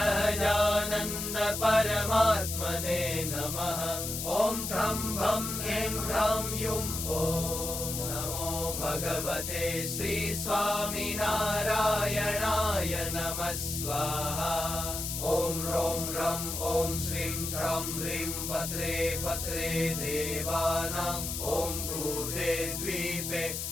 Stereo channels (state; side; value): noise; left; hiss, 4 dB below the sound